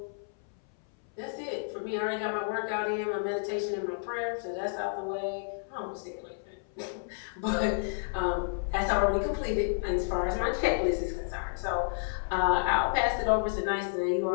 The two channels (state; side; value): silent; right; 57 dB below the other